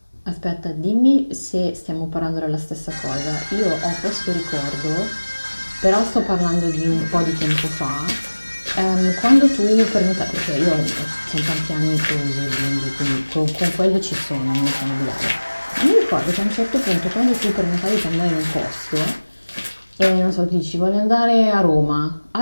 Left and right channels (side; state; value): both; inverted; correlation -1.00